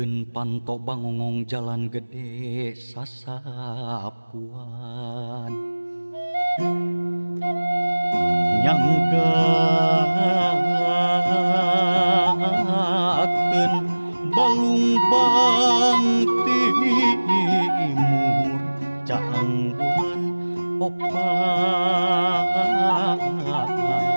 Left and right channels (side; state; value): both; inverted; correlation -1.00